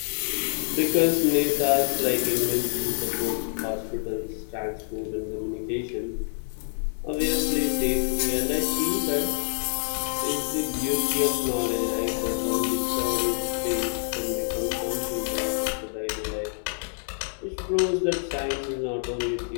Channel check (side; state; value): right; silent; 58 dB below the other